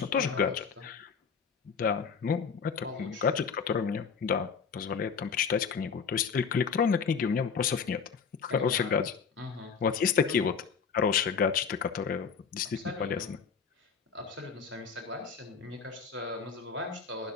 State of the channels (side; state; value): right; quieter; 6.0 dB